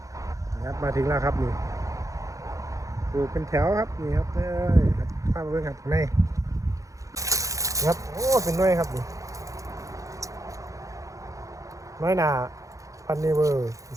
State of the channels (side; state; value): left; late; 0.16 ms